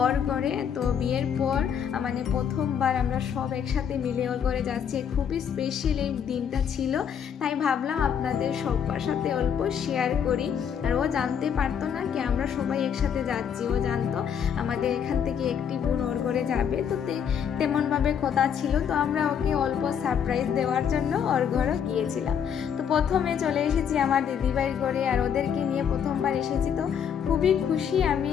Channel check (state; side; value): quieter; right; 8.0 dB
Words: ওর ঘরে। তো বিয়ের পর প্রথমবার আমরা সব একসাথে মিলে ওর ঘরে যাচ্ছি। খুবই স্পেশাল এই দিনটা ছিল, তাই ভাবলাম আপনাদের সবার সাথে অল্প শেয়ার করি। আর ও জানতে পারতো না কি আমরা সবাই একসাথে যাচ্ছি, ও জানতো আমাদের এখান থেকে একটি বোন ওর ঘরে যাবে, তো তেমনভাবে কথা ছিল। তো আমরা ওকে অল্প সারপ্রাইজ দেওয়ার জন্য ওর ঘরে গিয়েছিলাম। তো প্রথমে চলে এসেছি আমার দিদিভাইয়ের ঘরে, আর ওদেরকে নিয়ে প্রথমবার এসেছি। তো খুবই খুশি আমি